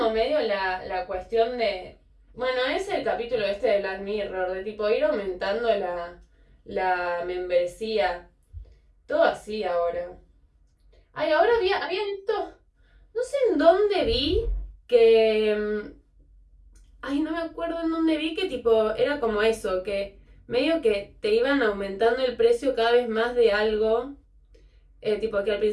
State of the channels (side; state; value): both; identical; correlation 1.00